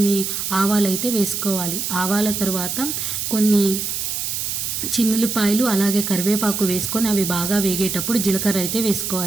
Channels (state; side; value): noise; right; hiss, 3 dB below the sound